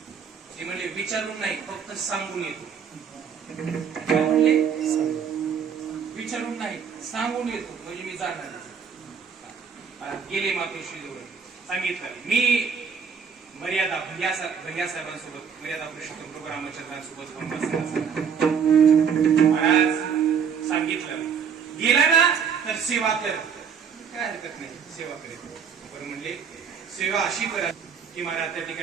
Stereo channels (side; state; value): left; quieter; 6.9 dB